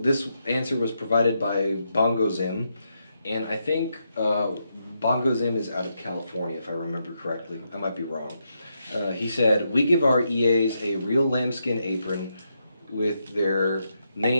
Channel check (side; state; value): both; inverted; correlation -0.82